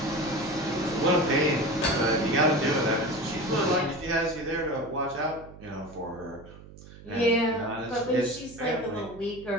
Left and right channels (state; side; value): noise; right; hum, 18 dB below the sound